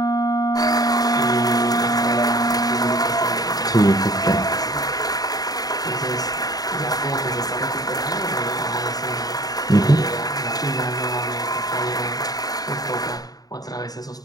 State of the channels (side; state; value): right; late; 0.18 ms